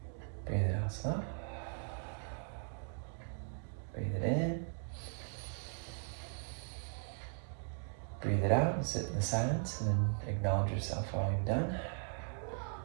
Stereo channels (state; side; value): silent; left; 52 dB below the other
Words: Breathe it out slow. Breathe it in. Breathe it out and sit in the silence and then acknowledge yourself while you've done.